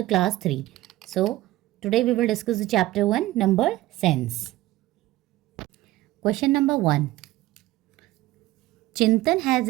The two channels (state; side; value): quieter; left; 16.9 dB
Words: class 3. So today we will discuss the chapter 1 number sense. Question number 1. Chintan has